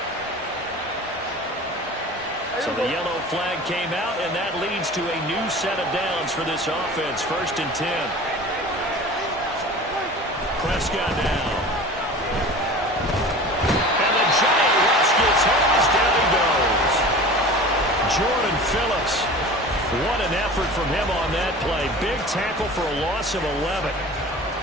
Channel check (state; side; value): normal; both; correlation 0.38